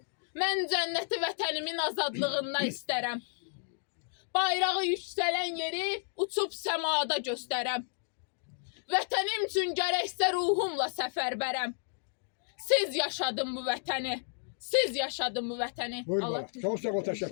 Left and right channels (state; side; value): silent; right; digital silence